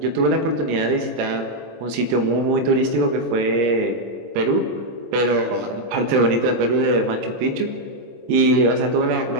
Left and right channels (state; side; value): late; left; 25 ms